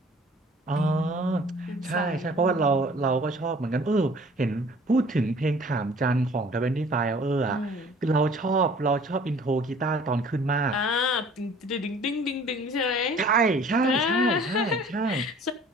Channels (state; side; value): normal; both; correlation 0.51